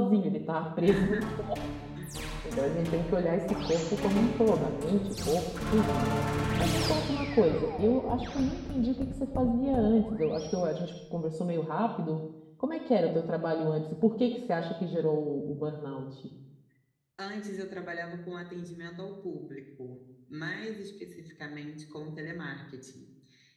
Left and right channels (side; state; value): both; identical; correlation 1.00